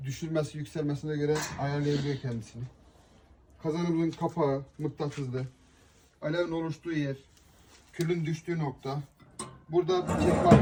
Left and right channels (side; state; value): both; identical; correlation 1.00